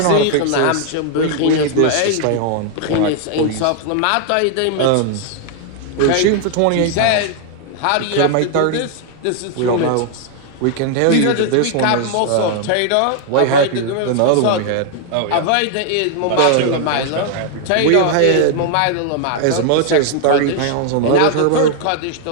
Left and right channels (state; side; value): different; both; correlation 0.00